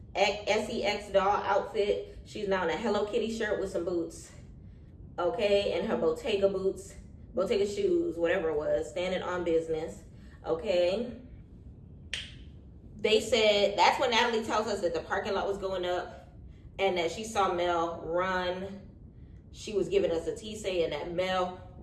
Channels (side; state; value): both; identical; correlation 1.00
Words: SEX doll outfit. She's now in a Hello Kitty shirt with some boots, okay, and her Bottega boots, Bottega shoes, whatever it was, standing on business, okay. They said, that's when Natalie tells us that the parking lot was going up and that she saw Mel run. She was giving us a tease saying that Mel